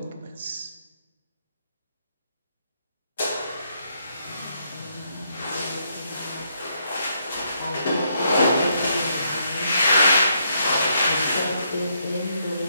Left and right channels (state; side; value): inverted; both; correlation -0.74